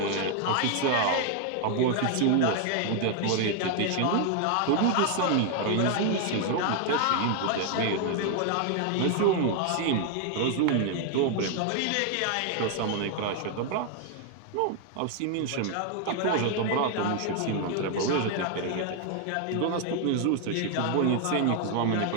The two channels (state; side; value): different; both; correlation 0.00